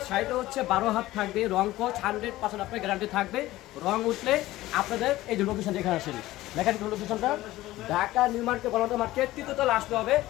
শাড়িটা হচ্ছে 12 হাত থাকবে, রং কোচ 100% আপনার গ্যারান্টি থাকবে। রং উঠলে আপনাদের এই যে লোকেশন যেখানে আসেন, দেখেন লোকেশনটা ঢাকা নিউ মার্কেট বলতে মার্কেট 3য় তলা আসতে হবে।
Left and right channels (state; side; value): quieter; right; 16.6 dB